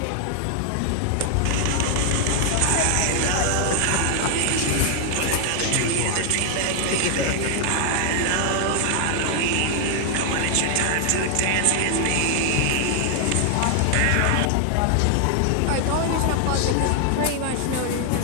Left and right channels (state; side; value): different; both; correlation 0.00